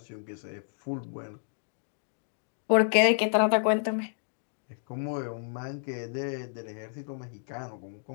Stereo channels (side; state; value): right; silent; digital silence